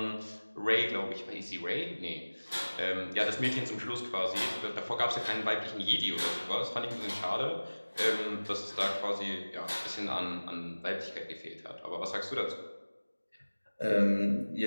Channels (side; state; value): both; inverted; correlation -1.00